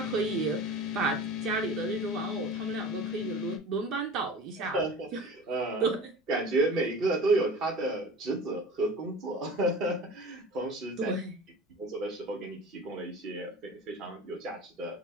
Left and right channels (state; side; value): normal; both; correlation 0.37